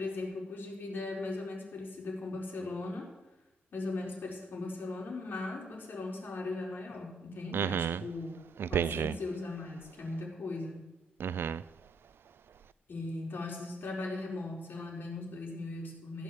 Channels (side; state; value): both; normal; correlation 0.70